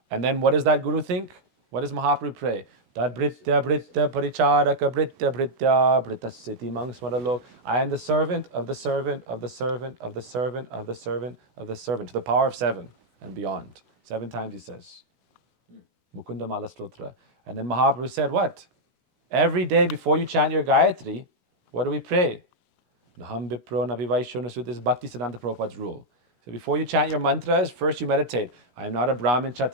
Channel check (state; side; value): late; left; 16 ms